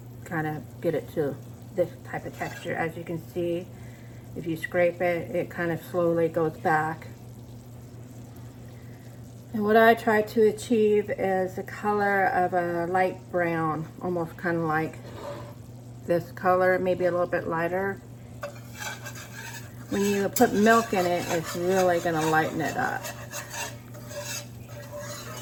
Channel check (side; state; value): both; identical; correlation 1.00